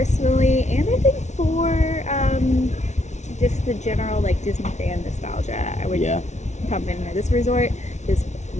and I think for just the general like Disney fan nostalgia, I would pump in there. This resort is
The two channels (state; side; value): late; right; 0.33 ms